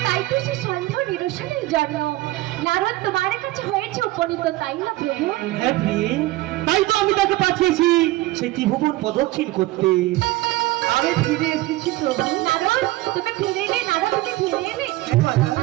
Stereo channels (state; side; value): quieter; left; 18.3 dB